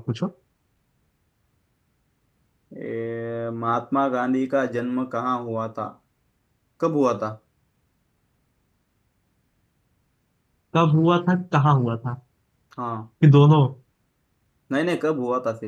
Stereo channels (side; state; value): both; identical; correlation 1.00